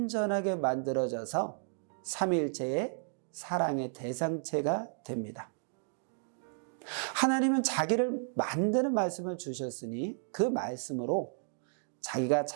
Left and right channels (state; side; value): silent; left; digital silence